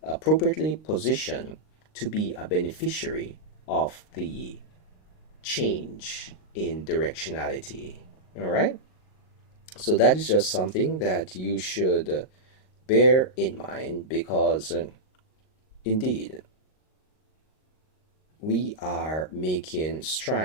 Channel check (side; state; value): right; late; 38 ms